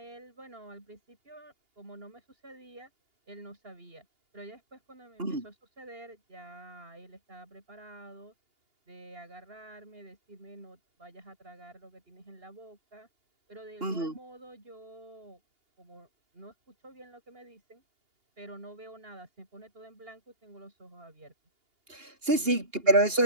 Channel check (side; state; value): left; late; 2.8 ms